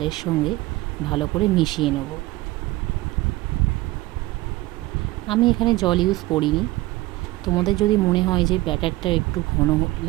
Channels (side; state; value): left; quieter; 19.1 dB